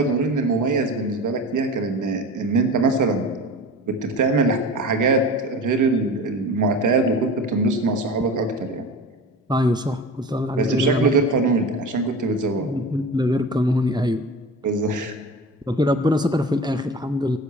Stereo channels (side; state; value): both; normal; correlation 0.33